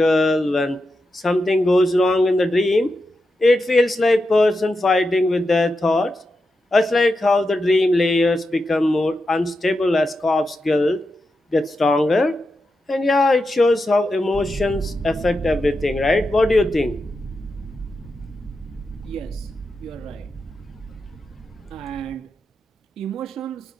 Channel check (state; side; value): normal; both; correlation 0.88